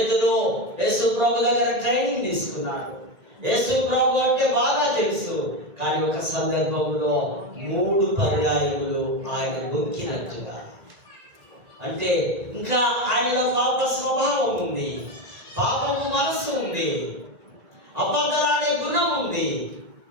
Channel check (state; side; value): late; left; 1.9 ms